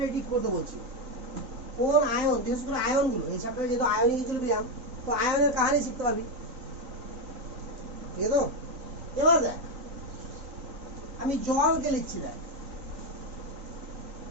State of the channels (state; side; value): late; left; 3.9 ms